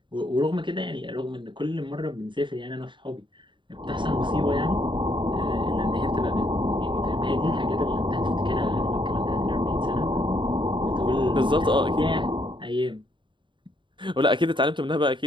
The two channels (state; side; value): late; left; 0.23 ms